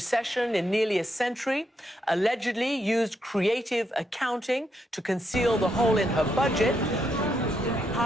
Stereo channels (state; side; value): normal; both; correlation 0.79